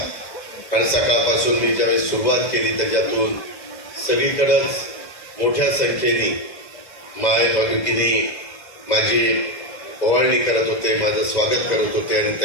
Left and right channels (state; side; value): late; right; 2.0 ms